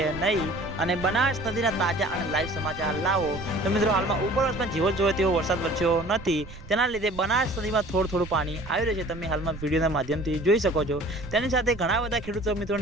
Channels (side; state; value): right; noise; rumble, 14 dB below the sound